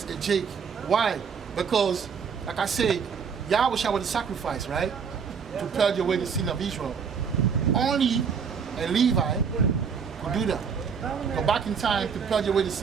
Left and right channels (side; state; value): left; quieter; 6.4 dB